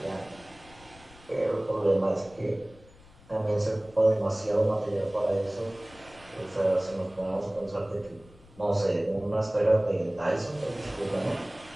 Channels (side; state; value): left; noise; rumble, 24 dB below the sound